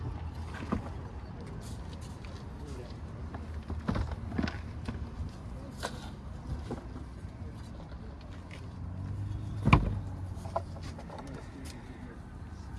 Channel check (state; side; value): identical; both; correlation 1.00